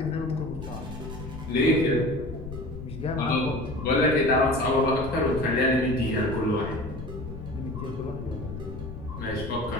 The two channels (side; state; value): left; noise; rumble, 10 dB below the sound